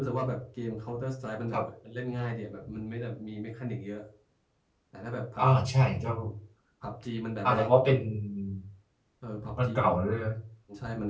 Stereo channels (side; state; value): both; identical; correlation 1.00